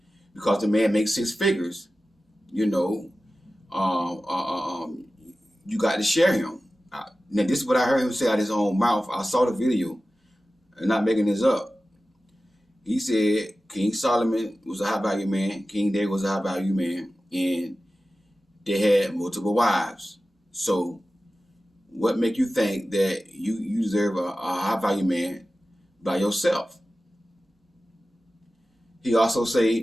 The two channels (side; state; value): both; normal; correlation 0.95